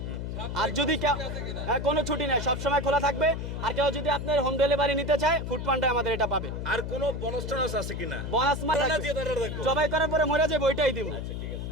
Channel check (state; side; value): noise; left; hum, 5 dB below the sound